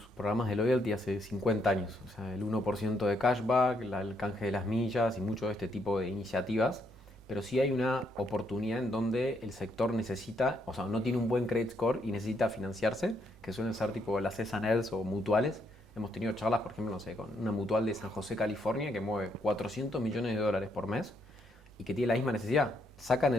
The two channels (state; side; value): normal; both; correlation 0.74